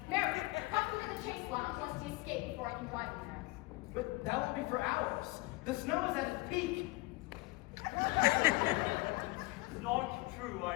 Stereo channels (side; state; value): right; quieter; 22.5 dB